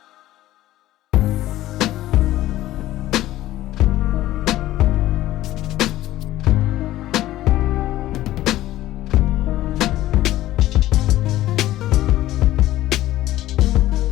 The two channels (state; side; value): quieter; right; 15.0 dB